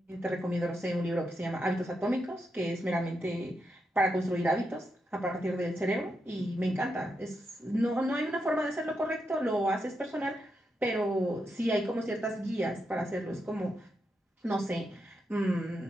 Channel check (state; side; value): normal; both; correlation 0.84